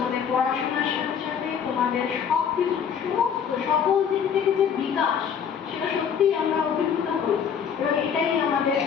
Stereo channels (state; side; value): quieter; right; 7.5 dB